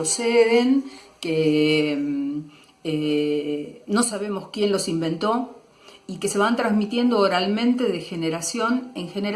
que no sabemos quién los inventó, y que se van transmitiendo oralmente de generación en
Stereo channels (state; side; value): identical; both; correlation 1.00